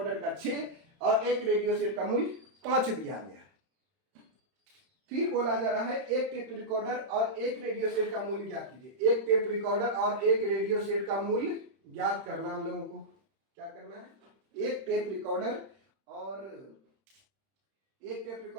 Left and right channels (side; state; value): left; late; 31 ms